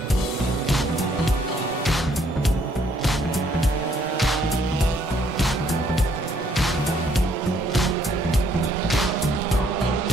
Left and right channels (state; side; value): normal; both; correlation 0.66